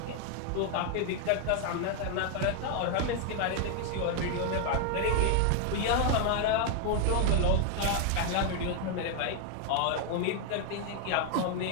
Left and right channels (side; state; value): both; different; correlation 0.01